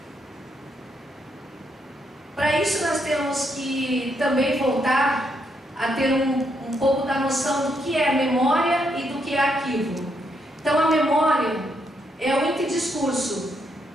Para isso nós temos que também voltar a ter um pouco da noção do que é memória e do que é arquivo. Então a memória é o interdiscurso,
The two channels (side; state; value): both; normal; correlation 0.77